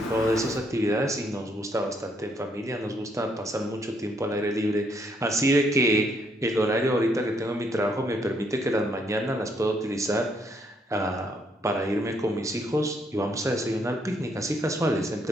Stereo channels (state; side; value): normal; both; correlation 0.71